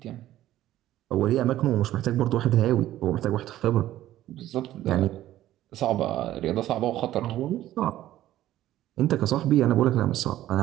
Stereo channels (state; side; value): quieter; left; 13.8 dB